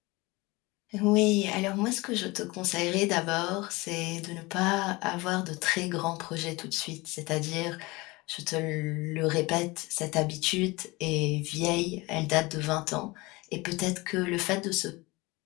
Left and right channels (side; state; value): right; quieter; 23.1 dB